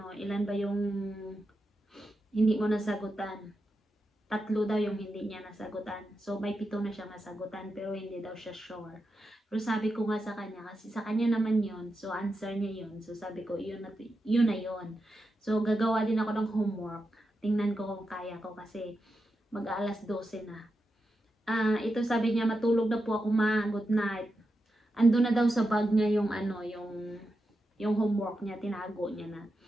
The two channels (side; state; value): both; normal; correlation 0.88